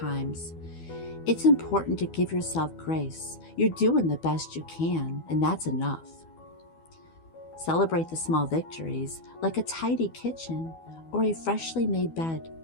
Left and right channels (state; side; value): late; right; 12 ms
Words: it's important to give yourself grace. You're doing the best you can, and that's enough. Celebrate the small victories, like a tidy kitchen or a freshly made bed.